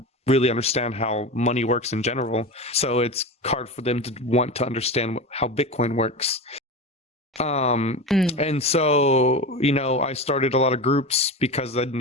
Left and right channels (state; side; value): normal; both; correlation 0.25